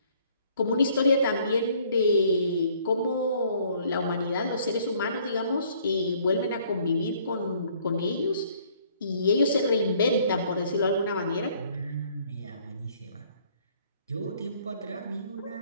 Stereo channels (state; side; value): inverted; both; correlation -0.61